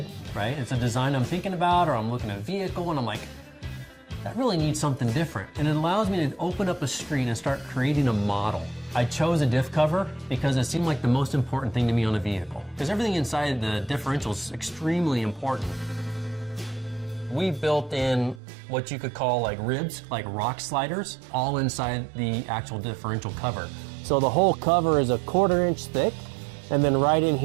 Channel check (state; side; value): drops out; left; at 18.4 s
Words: right? It's a design I'm thinking about, or I'm looking at a vehicle and I'm like, that really needs something different. And it allows me to open up a screen and start creating a model. I chose a diff cover because it seemed like the most important thing to me on a vehicle. Because everything inside the differential is extremely important. We built in what you could call like ribs, like rock sliders, all inside the actual differential cover. So the whole cover is a 1/4 inch thick, and then right in